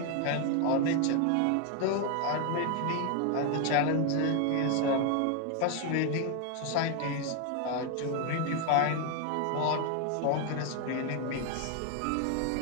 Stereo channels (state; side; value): different; both; correlation 0.01